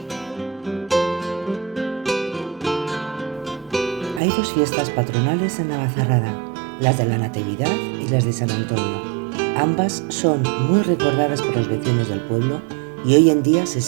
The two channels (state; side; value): drops out; left; at 4.2 s